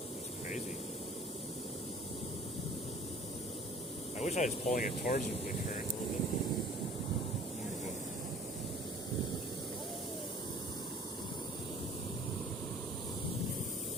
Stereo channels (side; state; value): both; normal; correlation 0.50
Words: It's crazy. I wish I was pulling it towards the current a little bit.